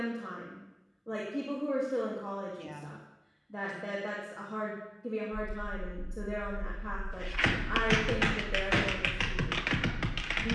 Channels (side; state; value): both; identical; correlation 1.00